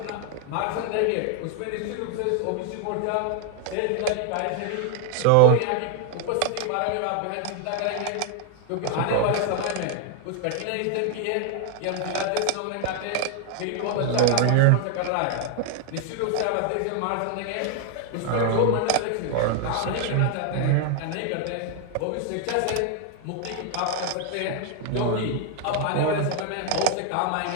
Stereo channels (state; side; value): different; both; correlation 0.01